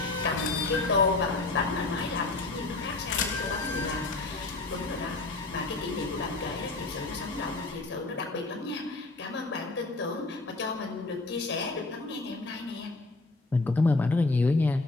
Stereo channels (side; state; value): right; quieter; 3.3 dB